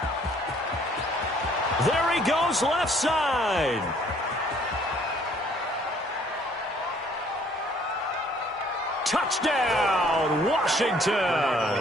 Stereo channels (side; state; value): both; normal; correlation 0.60